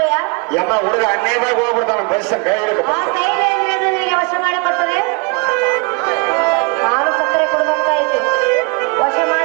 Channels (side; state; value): left; quieter; 31.5 dB